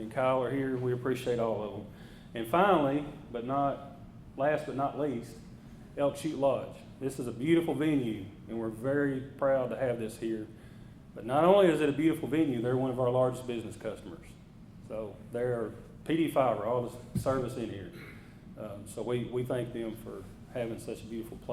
Kyle are here. We appreciate all of them. And finally, last but not least, Elk Chute Lodge. This is a beautiful venue, and we're very proud to have this here. But not only is it a beautiful venue, they're one of our largest business customers. So they're PD Fiber, all the service in here. So we thank them for having such a beautiful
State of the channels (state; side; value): identical; both; correlation 1.00